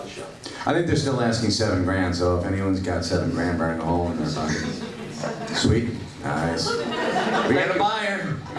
the show. I think they're still asking $7,000, so if anyone's got $7,000, burn a hole in their pocket. Sweet. Nice. We got a buyer.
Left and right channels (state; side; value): identical; both; correlation 1.00